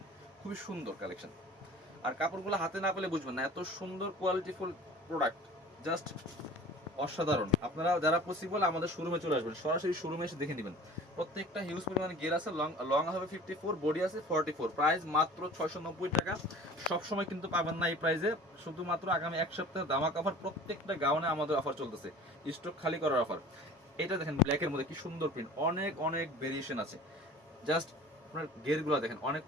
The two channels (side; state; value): both; normal; correlation 0.43